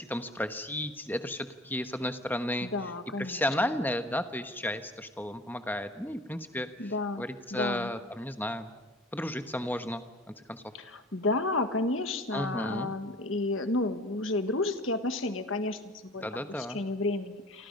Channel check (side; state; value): both; normal; correlation 0.43